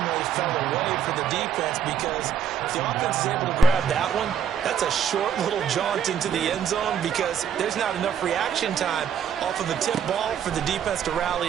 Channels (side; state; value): left; quieter; 8.0 dB